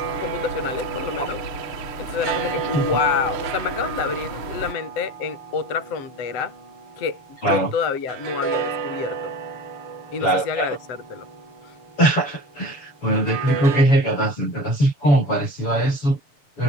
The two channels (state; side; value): late; right; 7.1 ms